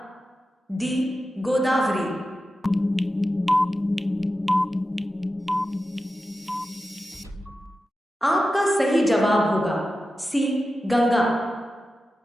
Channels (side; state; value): both; normal; correlation 0.92